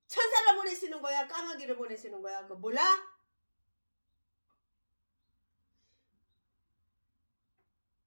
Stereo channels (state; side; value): inverted; both; correlation -1.00